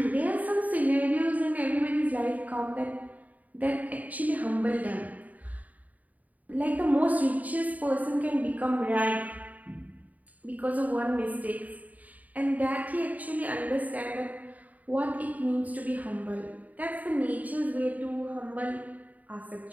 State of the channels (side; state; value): left; late; 0.074 ms